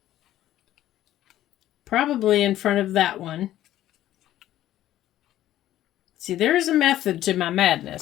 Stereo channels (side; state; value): right; quieter; 13.2 dB